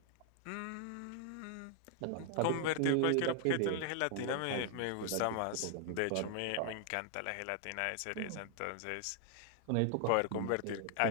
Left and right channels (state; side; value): different; both; correlation 0.00